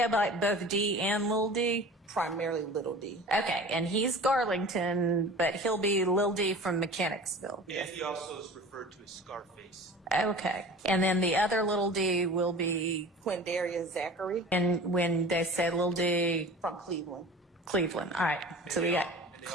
by both D and Little D? primarily Little D. Okay. And he's Garlington, but he'll be Lil D from Mechanicsville. And he also is referred to as Scarface. Okay. And then the other Little D will be, Quindarius Zachary and when they say Lil D, from Cleveland. Cleveland. All right. So we got And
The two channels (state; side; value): normal; both; correlation 0.39